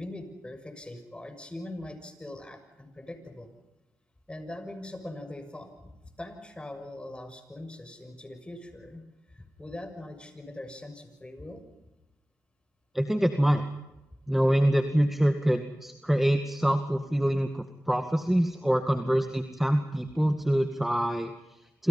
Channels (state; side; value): normal; both; correlation 0.98